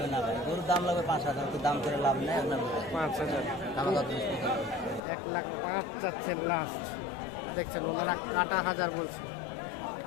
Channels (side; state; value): right; drops out; at 5.0 s